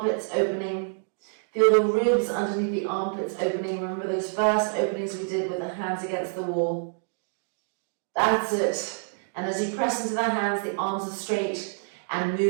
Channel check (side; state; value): left; silent; digital silence